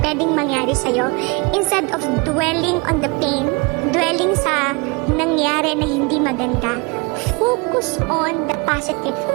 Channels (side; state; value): left; quieter; 28.8 dB